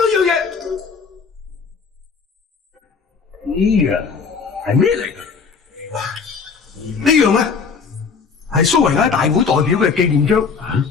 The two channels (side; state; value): right; quieter; 5.5 dB